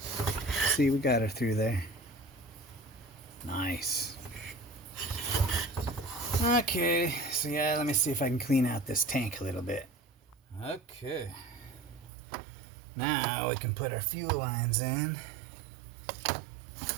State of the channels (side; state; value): left; drops out; at 12.1 s